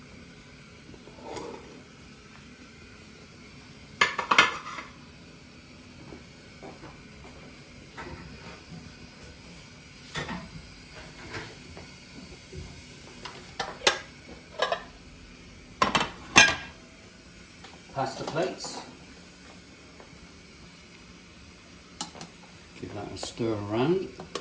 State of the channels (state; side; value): identical; both; correlation 1.00